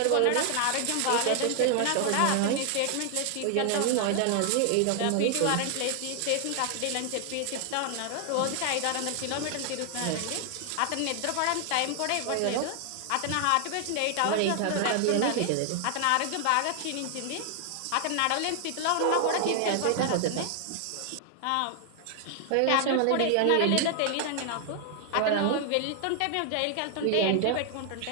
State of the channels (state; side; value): different; both; correlation 0.00